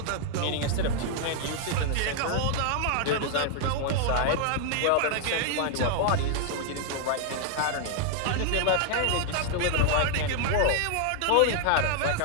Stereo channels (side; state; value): both; different; correlation 0.00